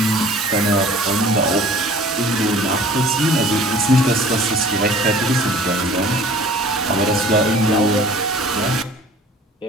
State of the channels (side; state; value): both; normal; correlation 0.48